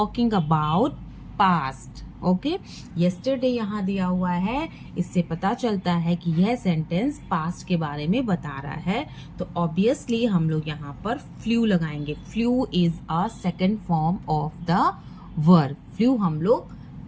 about past. Okay yesterday यहाँ दिया हुआ है, इससे पता चलता है कि यह सेंटेंस पास्ट के बारे में बता रहा है. तो ऑब्वियसली हम लोग यहाँ पर फ्लू लगाएंगे. Flu is a second form of the verb. Flu हम लोग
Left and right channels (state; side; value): identical; both; correlation 1.00